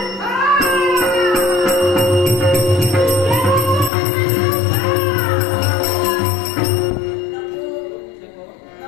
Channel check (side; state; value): right; drops out; at 3.9 s